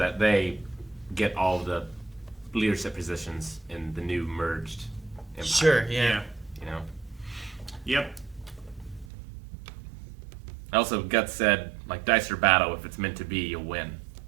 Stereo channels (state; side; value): drops out; left; at 9.1 s